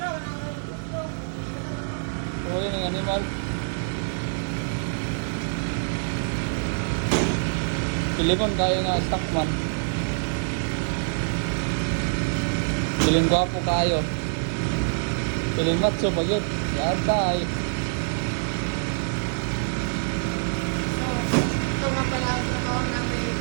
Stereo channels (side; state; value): left; silent; digital silence